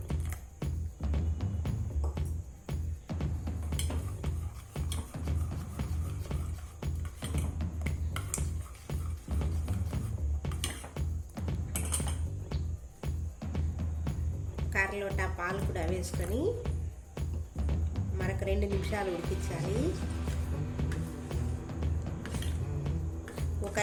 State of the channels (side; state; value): both; identical; correlation 1.00